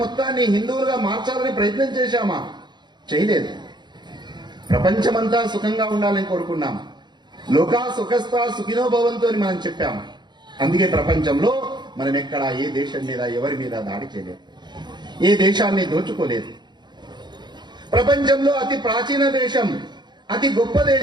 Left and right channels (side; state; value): left; late; 0.21 ms